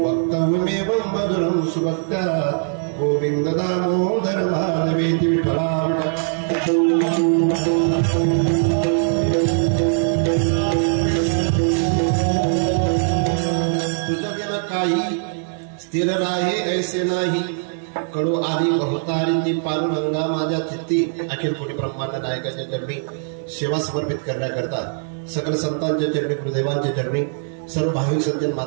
मधुरं सुभक्त्या, गोविंद दामोदर माधवेति. विठ्ठला तुझं बिना काही स्थिर राहे ऐसे नाही, कडो आली बहुतारिती पांडुरंगा माझ्या चित्ती. अखिल कोटी ब्रह्मांड नायकाच्या चरणी सेवा समर्पित करण्याकरता सकल संतांच्या चरणी, गुरुदेवांच्या चरणी, सर्व भाविक सज्जन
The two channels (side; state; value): left; silent; digital silence